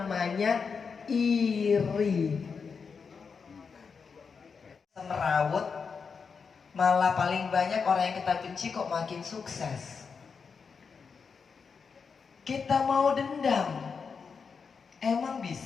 iri. Merawut, malah paling banyak orang yang kita benci kok makin sukses. Kita mau dendam, emang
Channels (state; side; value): quieter; right; 5.6 dB